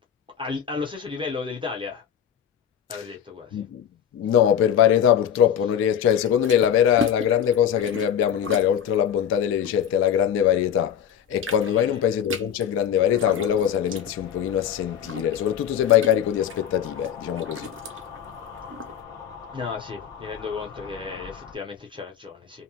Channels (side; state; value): right; quieter; 9.1 dB